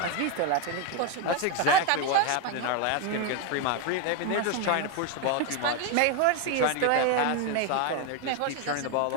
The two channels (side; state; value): both; different; correlation 0.01